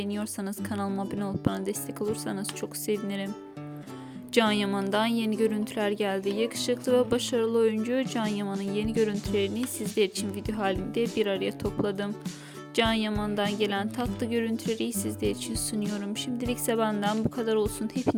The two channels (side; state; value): both; identical; correlation 1.00